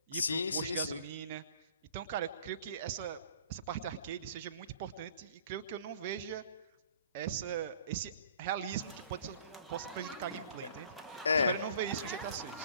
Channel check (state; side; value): inverted; both; correlation -0.51